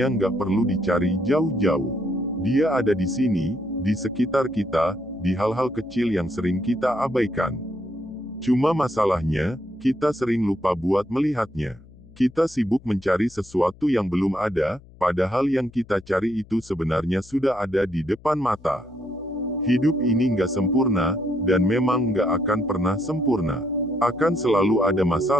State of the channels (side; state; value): left; noise; hum, 23 dB below the sound